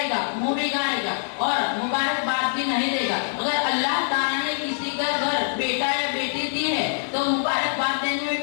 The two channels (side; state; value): right; silent; 56 dB below the other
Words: मुंह बिगाड़ेगा और मुबारकबाद भी नहीं देगा। अगर अल्लाह ताला ने किसी का घर बेटा या बेटी दी है तो मुबारकबाद देने